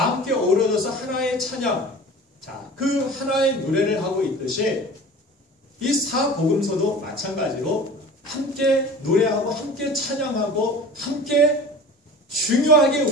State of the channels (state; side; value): normal; both; correlation 0.39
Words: 함께 어우러져서 하나의 찬양, 자, 그 하나의 노래를 하고 있듯이 이 4복음서도 마찬가지로 함께 노래하고 함께 찬양하고 함께 중요하게